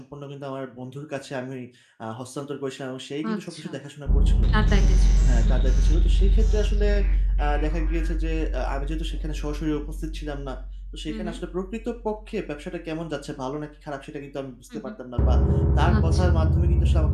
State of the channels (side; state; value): both; identical; correlation 1.00